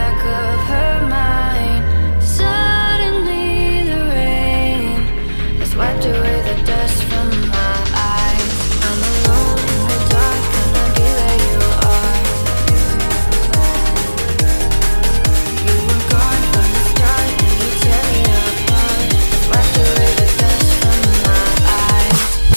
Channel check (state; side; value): inverted; both; correlation -1.00